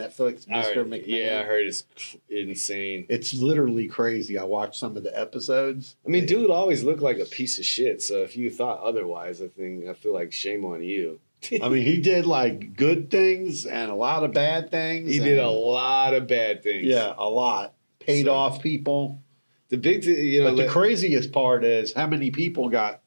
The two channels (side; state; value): both; inverted; correlation -1.00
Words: Mr. McMahon. Yeah, I heard it's insane. It's literally crazy. I watched some of the episodes. I mean, dude always looked like a piece of shit. So if you thought otherwise, I feel like shame on you. I mean, he did like good things and a lot of bad things. He did a lot of bad things. Yeah, a lot. Paid off people. The big thing, But the craziest part is how many people got